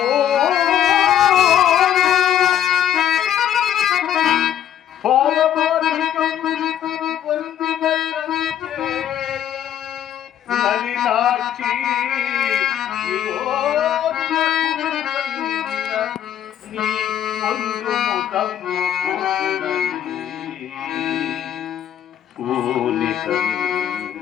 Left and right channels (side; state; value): right; quieter; 10.5 dB